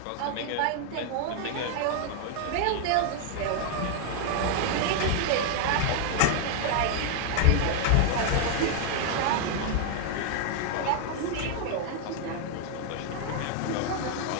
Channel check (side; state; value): both; different; correlation 0.00